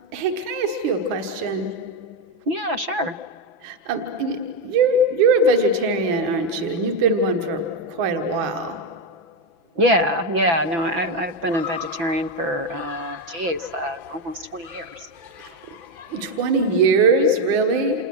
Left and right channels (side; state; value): left; late; 6.0 ms